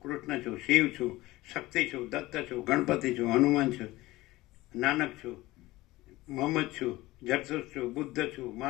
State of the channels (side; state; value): right; quieter; 18.7 dB